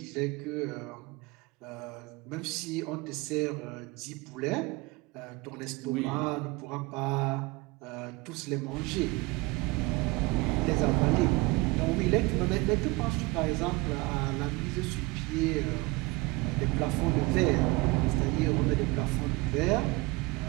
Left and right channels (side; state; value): left; quieter; 23.3 dB